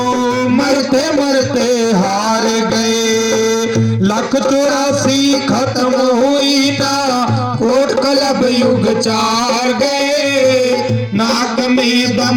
मरते मरते हार गए। 184 खत्म हुई ना, कोट कलब युग 4 गए, नाक में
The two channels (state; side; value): identical; both; correlation 1.00